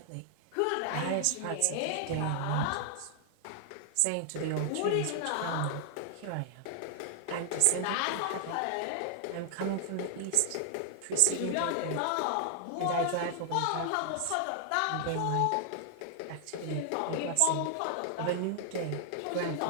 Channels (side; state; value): both; different; correlation 0.00